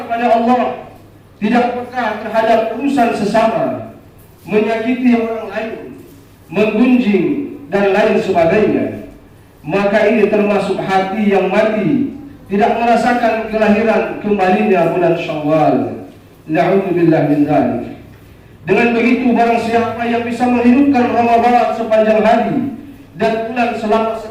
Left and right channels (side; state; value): both; identical; correlation 1.00